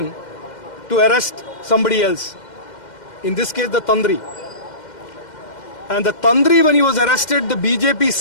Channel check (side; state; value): right; late; 2.1 ms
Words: to arrest somebody else. In this case, the Tandri. And the Tandri, when he was arrested, the BJP